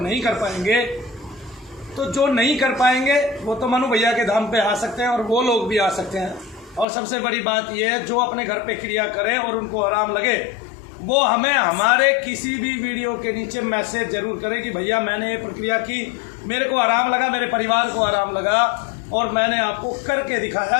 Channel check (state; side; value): drops out; right; at 6.9 s